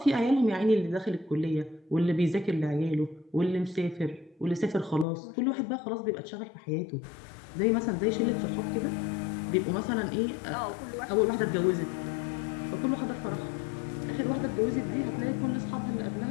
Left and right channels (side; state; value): right; drops out; at 5.1 s